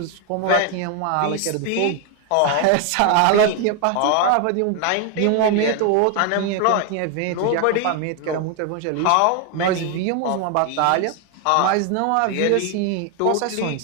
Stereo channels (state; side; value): different; both; correlation 0.01